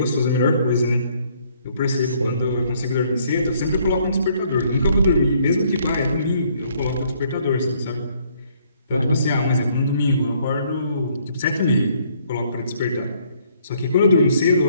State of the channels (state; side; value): inverted; both; correlation -0.66